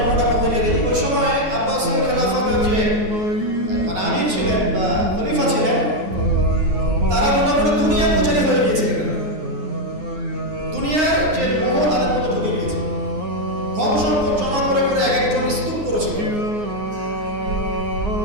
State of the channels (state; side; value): late; left; 9.6 ms